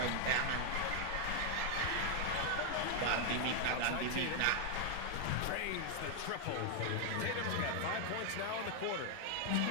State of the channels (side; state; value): both; different; correlation 0.01